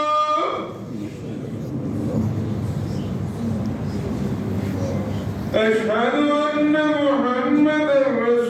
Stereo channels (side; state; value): both; identical; correlation 1.00